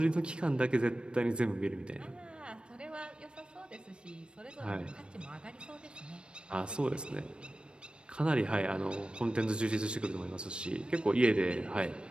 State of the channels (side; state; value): left; late; 0.055 ms